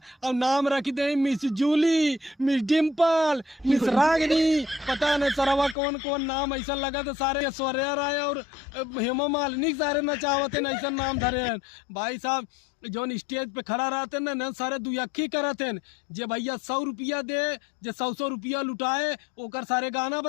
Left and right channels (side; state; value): right; drops out; at 5.8 s